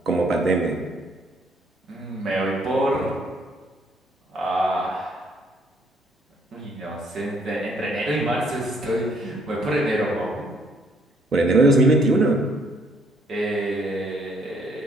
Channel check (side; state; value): both; normal; correlation 0.67